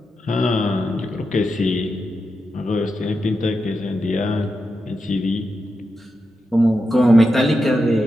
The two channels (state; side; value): normal; both; correlation 0.88